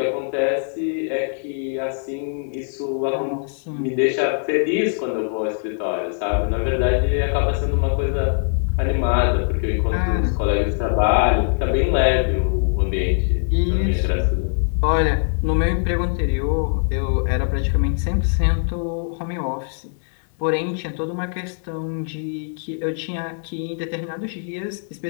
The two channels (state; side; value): silent; right; 64 dB below the other